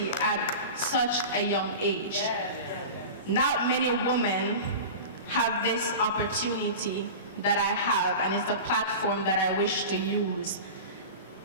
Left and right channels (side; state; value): both; inverted; correlation -0.31